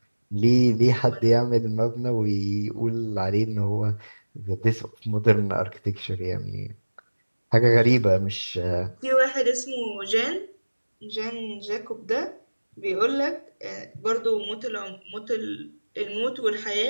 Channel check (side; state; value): both; inverted; correlation -1.00